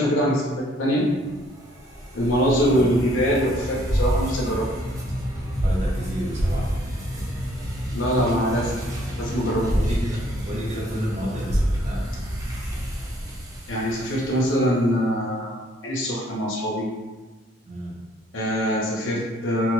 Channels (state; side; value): normal; both; correlation 0.63